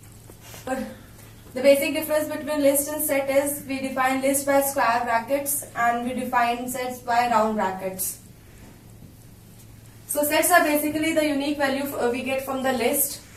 The basic difference between list and set is we define list by square brackets and we define sets by round brackets. So sets are basically the unique value we get from the list.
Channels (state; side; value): identical; both; correlation 1.00